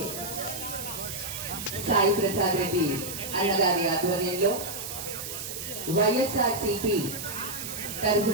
సాయి ప్రసాద్ రెడ్డి అన్నగారి ఆధ్వర్యంలో వైఎస్ఆర్సీపీ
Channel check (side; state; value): right; noise; hiss, 7 dB below the sound